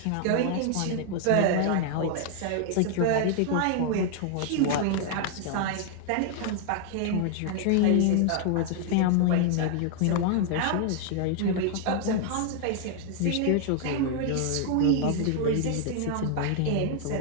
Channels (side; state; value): both; different; correlation 0.00